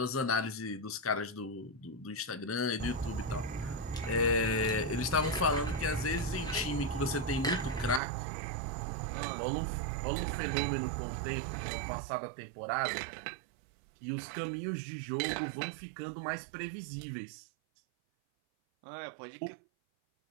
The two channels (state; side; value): drops out; left; at 8.0 s